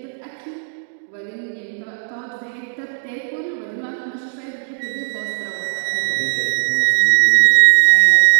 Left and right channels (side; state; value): left; silent; digital silence